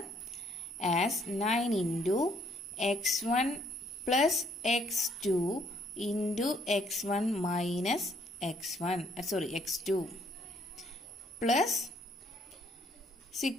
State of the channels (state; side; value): normal; both; correlation 0.66